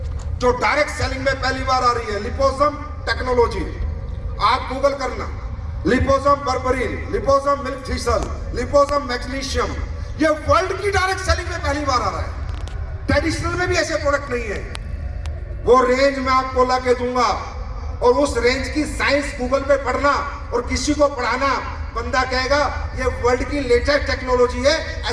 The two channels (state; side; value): identical; both; correlation 1.00